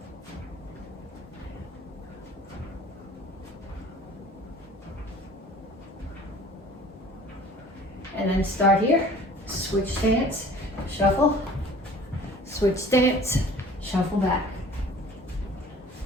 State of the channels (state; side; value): normal; both; correlation 0.48